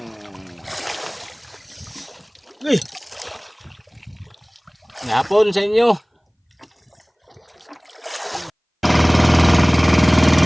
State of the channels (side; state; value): both; identical; correlation 1.00